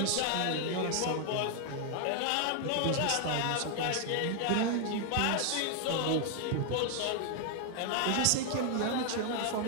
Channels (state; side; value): different; both; correlation 0.00